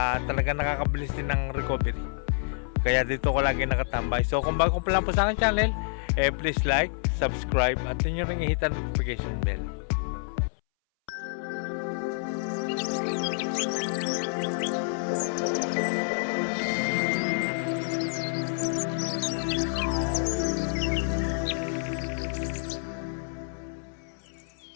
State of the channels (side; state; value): right; silent; 59 dB below the other